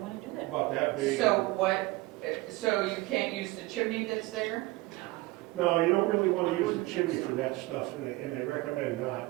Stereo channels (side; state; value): left; quieter; 20.5 dB